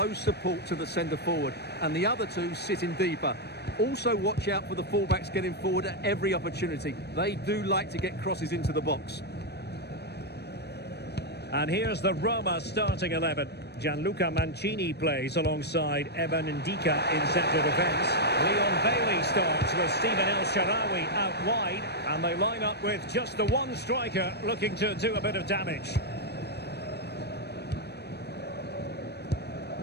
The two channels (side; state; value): right; late; 0.48 ms